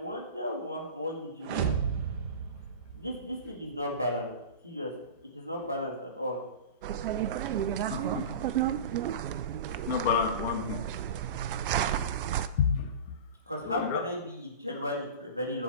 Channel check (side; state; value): both; inverted; correlation -0.31